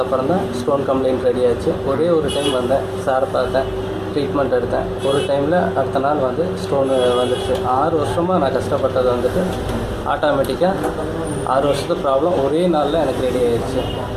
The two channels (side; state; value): both; identical; correlation 1.00